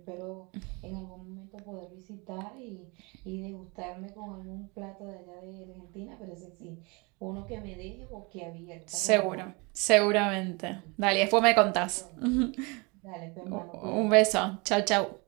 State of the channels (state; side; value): quieter; left; 28.8 dB